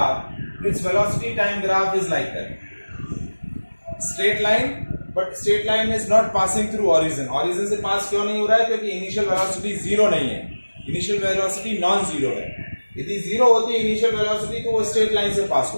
its velocity time graph is like that, straight line, but straight line is not passing through origin. Origin से पास क्यों नहीं हो रहा है, क्योंकि initial velocity zero नहीं है, initial velocity non zero है. यदि जीरो होती है इनिशियल वेलोसिटी तो वो स्ट्रेट लाइन से पास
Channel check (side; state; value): both; inverted; correlation -1.00